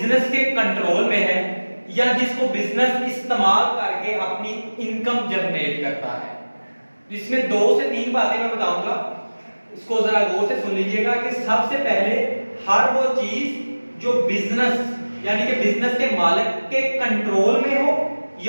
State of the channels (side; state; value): both; inverted; correlation -1.00